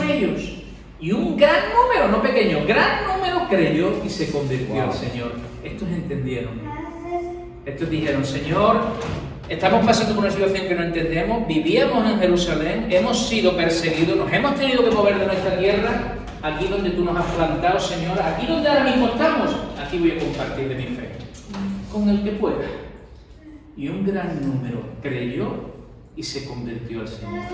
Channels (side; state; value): both; identical; correlation 1.00